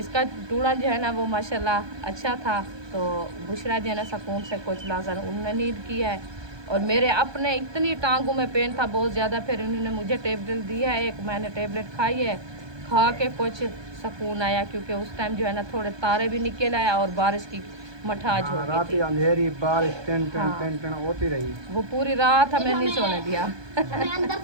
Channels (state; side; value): late; left; 1.2 ms